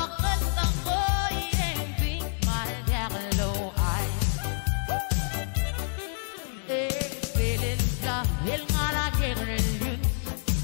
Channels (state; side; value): silent; right; 60 dB below the other